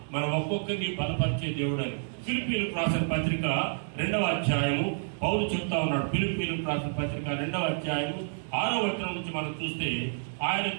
మన ఒక్కొక్కరిని బలపరిచే దేవుడు అని ఫిలిప్పీయులకు రాసిన పత్రిక 2వ అధ్యాయము పౌలు చెప్తా ఉన్నాడు. ఫిలిప్పీయులకు రాసిన పత్రిక 2వ అధ్యాయము 6వ వచనం నుంచి మనం చూస్తే, ఆయన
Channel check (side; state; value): left; silent; digital silence